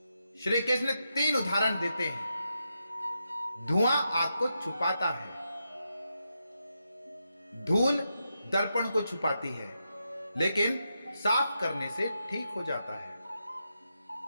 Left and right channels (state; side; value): inverted; both; correlation -0.85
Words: श्री कृष्ण 3 उदाहरण देते हैं। धुआं आग को छुपाता है, धूल दर्पण को छुपाती है, लेकिन साफ करने से ठीक हो जाता है।